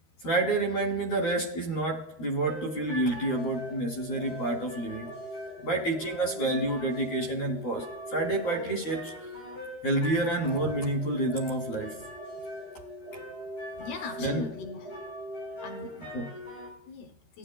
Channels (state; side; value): late; right; 13 ms